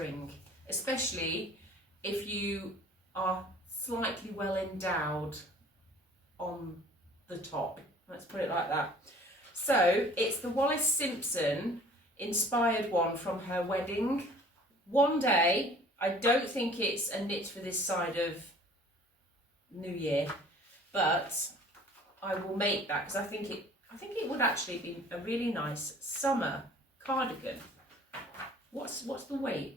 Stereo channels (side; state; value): both; normal; correlation 0.50